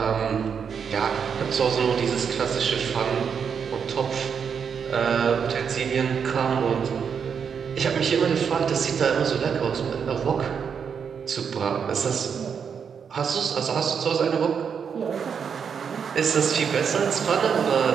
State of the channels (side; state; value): left; quieter; 6.8 dB